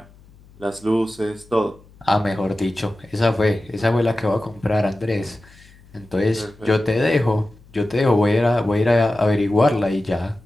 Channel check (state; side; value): noise; left; hum, 26 dB below the sound